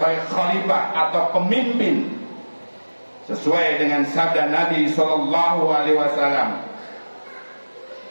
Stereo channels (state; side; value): inverted; both; correlation -1.00